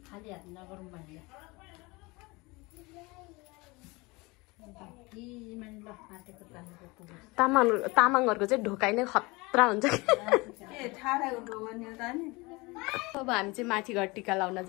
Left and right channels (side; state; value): right; quieter; 24.5 dB